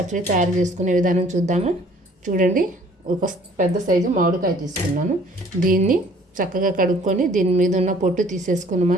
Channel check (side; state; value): both; normal; correlation 0.56